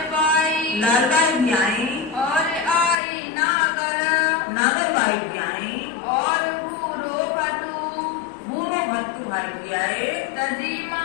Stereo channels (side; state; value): right; drops out; at 3.0 s